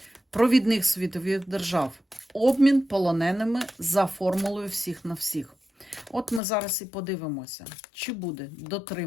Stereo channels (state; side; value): drops out; right; at 6.4 s